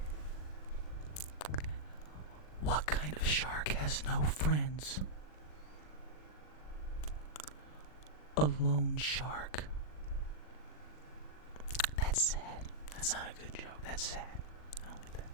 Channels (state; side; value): late; right; 40 ms